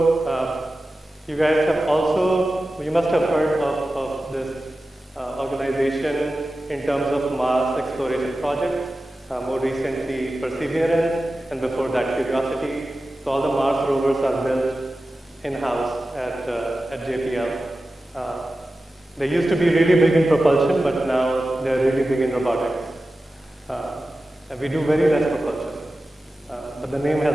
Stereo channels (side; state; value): both; normal; correlation 0.94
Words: you guys have also, you must have heard of this organization in terms of Mars exploration projects, more recently Perseverance, and before that Curiosity. So all the Mars rovers are built in-house at JPL. They used to be really big in propulsion, but now they're really big in robotics. And we do very less propulsion, but the name has